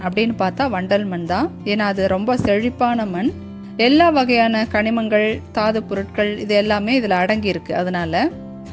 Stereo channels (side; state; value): both; identical; correlation 1.00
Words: அப்படின்னு பார்த்தா வண்டல் மண் தான். ஏன்னா அது ரொம்ப செழிப்பான மண். எல்லா வகையான கனிமங்கள், தாது பொருட்கள் இது எல்லாமே இதில் அடங்கியிருக்கு. அதனால